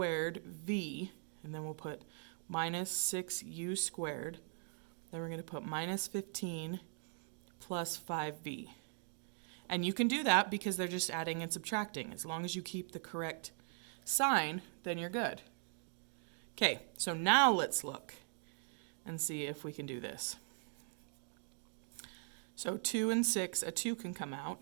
v, and then we'll put minus 6u squared. Then we're going to put minus 15 plus 5v. And you can do that because they're just adding and subtracting. As long as you keep the correct sign, then you're good. Okay, so now let's look and see if we can do this. So 2 and 6, a 2 can come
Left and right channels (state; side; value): silent; left; 51 dB below the other